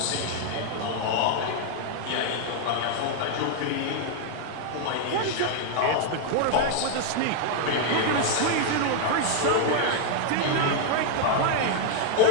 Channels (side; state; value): both; different; correlation 0.00